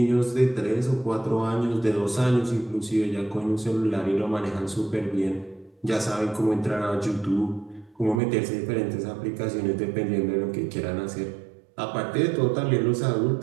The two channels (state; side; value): drops out; left; at 8.2 s